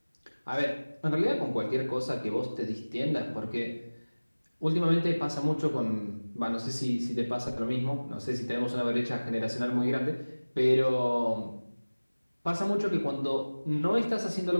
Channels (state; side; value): inverted; both; correlation -1.00